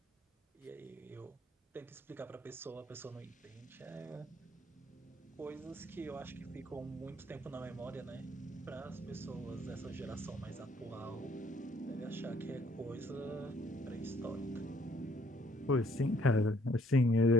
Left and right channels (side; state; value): both; normal; correlation 0.64